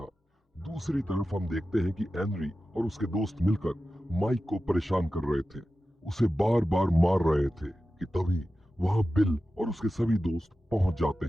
दूसरी तरफ हम देखते हैं कि एनरी और उसके दोस्त मिलकर माइक को परेशान कर रहे थे, उसे बार बार मार रहे थे कि तभी वहां बिल और उसके सभी दोस्त पहुंच जाते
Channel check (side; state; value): both; normal; correlation 0.94